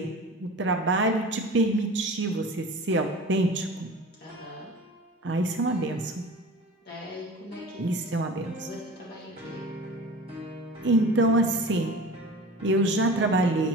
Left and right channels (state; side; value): normal; both; correlation 0.38